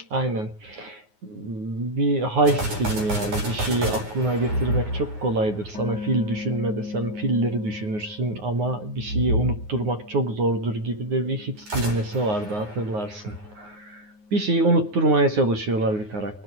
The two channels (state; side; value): late; left; 9.5 ms